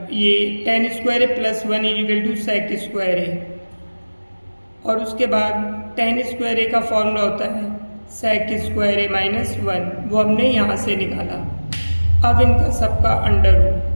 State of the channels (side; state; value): both; inverted; correlation -1.00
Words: ये tan square A plus 1 equal to sec square A, और उसके बाद tan स्क्वायर ए का फॉर्मूला होता है सेक स्क्वायर ए माइनस 1, वो हमने यहाँ से निकाला। अब इनका सबका अंडर